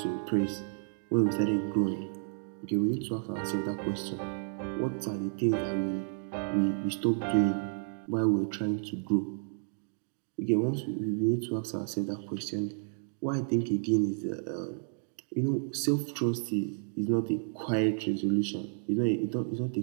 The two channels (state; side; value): silent; left; digital silence